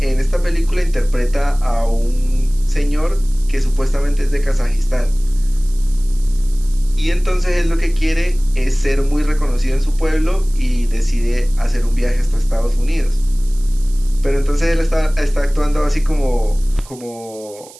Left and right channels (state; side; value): noise; right; hiss, 21 dB below the sound